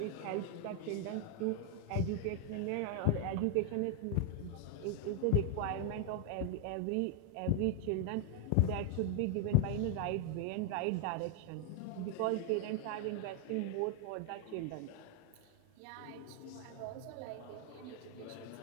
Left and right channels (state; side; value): different; both; correlation 0.00